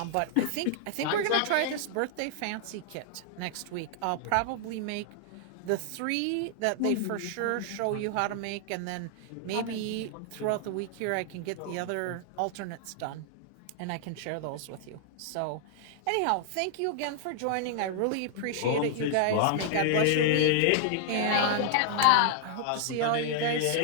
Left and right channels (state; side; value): different; both; correlation -0.01